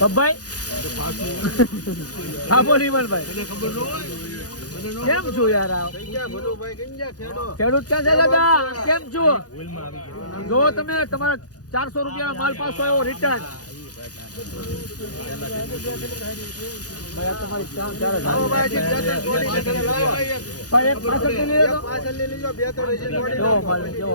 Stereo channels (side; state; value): right; late; 0.68 ms